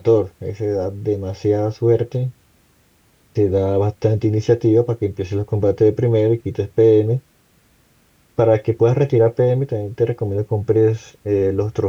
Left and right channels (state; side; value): identical; both; correlation 1.00